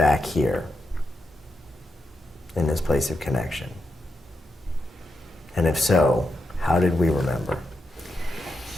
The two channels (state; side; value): normal; both; correlation 0.85